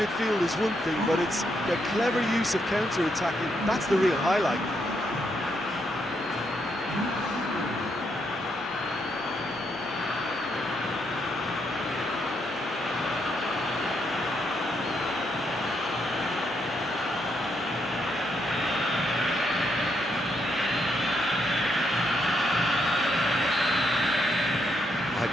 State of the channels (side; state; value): both; normal; correlation 0.77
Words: is one thing, but it's their clever use of counter-attacking. That's the real highlight.